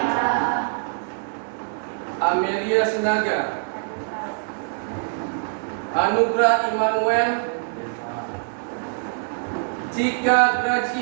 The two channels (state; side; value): silent; left; digital silence